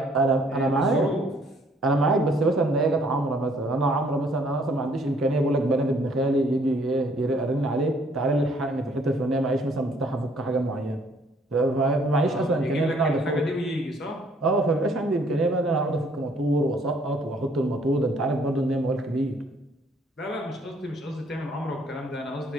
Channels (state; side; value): normal; both; correlation 0.63